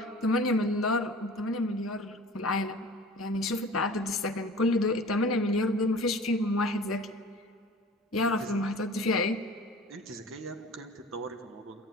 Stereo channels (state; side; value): normal; both; correlation 0.42